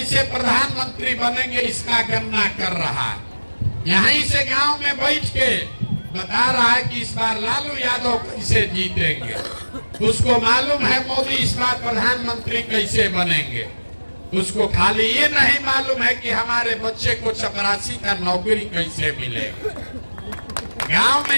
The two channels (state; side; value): inverted; both; correlation -1.00